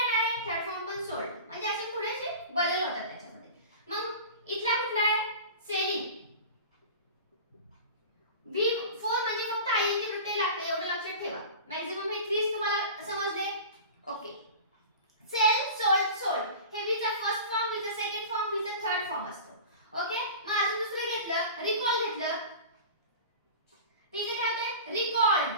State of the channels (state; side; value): inverted; both; correlation -0.35